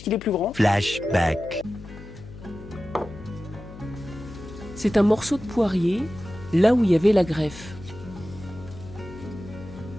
est plus grand. Flashback. C'est un morceau de poirier, là où il y avait la greffe.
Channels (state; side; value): noise; left; hum, 16 dB below the sound